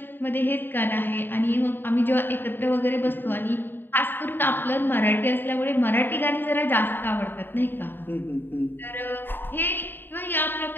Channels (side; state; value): right; late; 0.095 ms